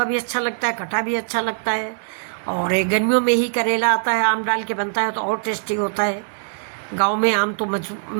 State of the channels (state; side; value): silent; left; digital silence